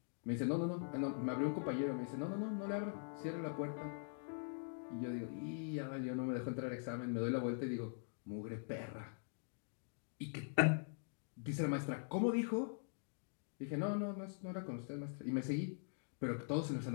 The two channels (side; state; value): right; silent; digital silence